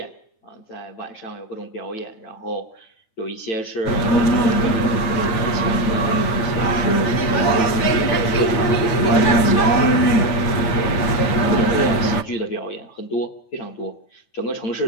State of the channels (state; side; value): late; right; 9.1 ms